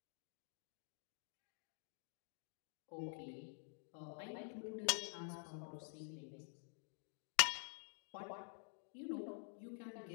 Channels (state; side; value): silent; right; digital silence